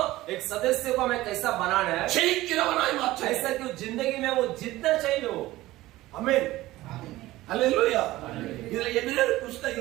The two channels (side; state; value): left; quieter; 17.2 dB